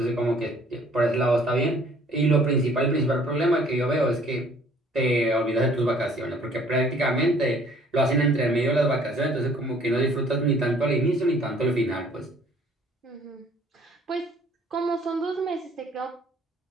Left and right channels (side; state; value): both; normal; correlation 0.57